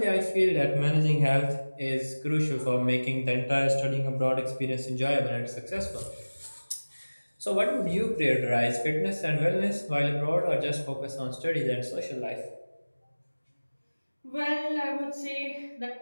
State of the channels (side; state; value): both; inverted; correlation -1.00